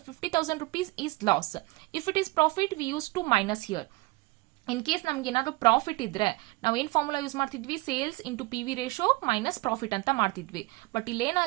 rupees is loss. If it is profit we used to minus here. In case ನಮ್ಗೆ ಏನಾದರೂ profit ಇದ್ರೆ ನಾವು ಏನು formula use ಮಾಡ್ತಿದ್ವಿ? Sales into PV ratio minus profit ಅಂತ ಮಾಡ್ತಿದ್ವಿ. But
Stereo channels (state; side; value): quieter; left; 22.9 dB